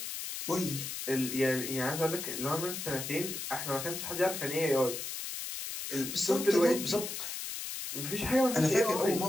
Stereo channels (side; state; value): left; noise; hiss, 6 dB below the sound